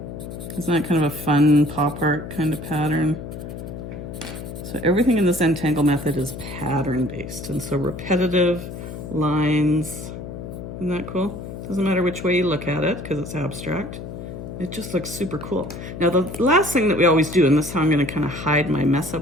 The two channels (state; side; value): noise; left; hum, 9 dB below the sound